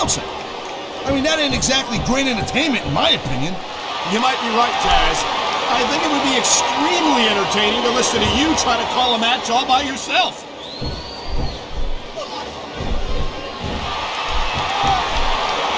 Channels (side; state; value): both; identical; correlation 1.00